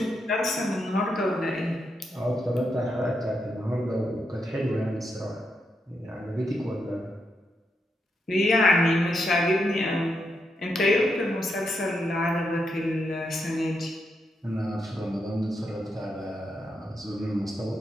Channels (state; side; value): normal; both; correlation 0.82